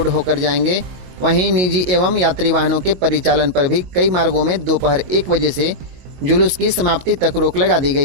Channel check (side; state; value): left; late; 22 ms